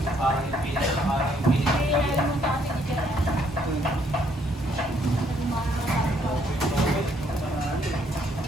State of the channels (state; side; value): normal; both; correlation 0.69